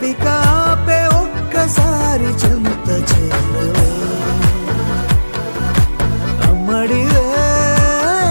ఆపే ఒక్కసారి చెంత చేరవే. అమ్మడివే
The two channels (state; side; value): inverted; both; correlation -1.00